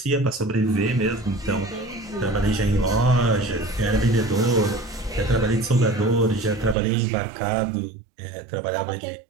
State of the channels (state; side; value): drops out; left; at 6.8 s